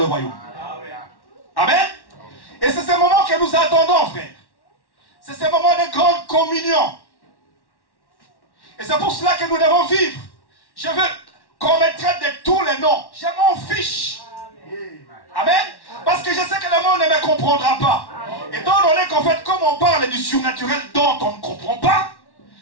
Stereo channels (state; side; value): late; right; 1.1 ms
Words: royaume. Amen. Et c'est ce moment que nous attendons, frère. C'est ce moment de grande communion. Et c'est pour cela que nous devons vivre. Je veux qu'on me traite de tous les noms. Je m'en fiche. Amen. Parce que je sais que le monde ne me comprendra pas. Étant donné qu'en fait, comme on parle du surnaturel dont on ne comprend pas,